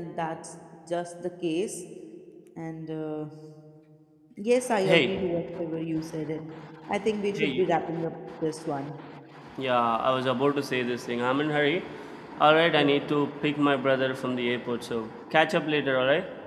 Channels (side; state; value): both; identical; correlation 1.00